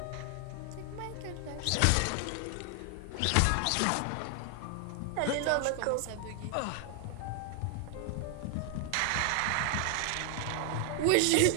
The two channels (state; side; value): different; both; correlation 0.00